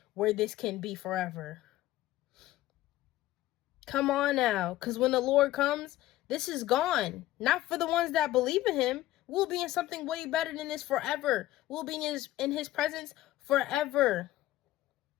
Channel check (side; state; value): right; quieter; 15.5 dB